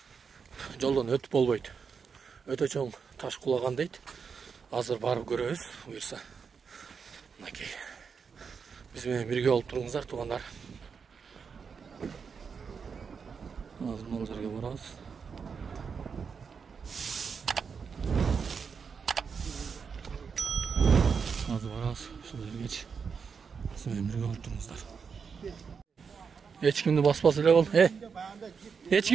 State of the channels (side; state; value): left; quieter; 5.9 dB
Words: Жолдон өтүп болбойт. Өтө чоң таш кулаган дейт. Азыр барып көрөбүз, буюрса. Мынакей. Биз менен бирге болуп туруңуздар, туугандар. Азыр бул жерге барабыз. Азыр барабыз, ушул жергечи. Siz birge olup durunuzlar. Hiç kimde basmaz öyle ol. Hiç